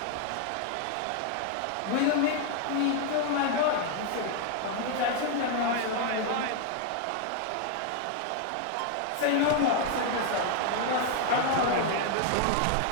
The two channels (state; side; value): different; both; correlation 0.00